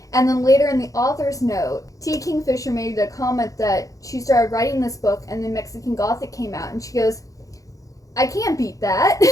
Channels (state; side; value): late; right; 0.16 ms